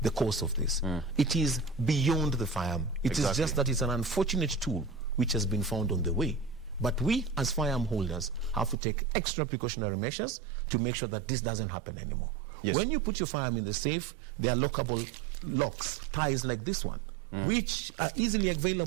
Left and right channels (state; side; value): drops out; left; at 8.8 s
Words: the cause of this. It is beyond the firearm. It is just that it's an unfortunate tool which has been found on the way. But we, as firearm holders, have to take extra precautionary measures to make sure that this doesn't happen anymore. Yes. When you put your firearm in the safe, there are lockable locks, ties like this one, which are easily